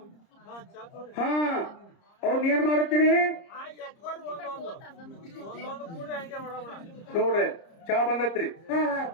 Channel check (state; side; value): late; right; 30 ms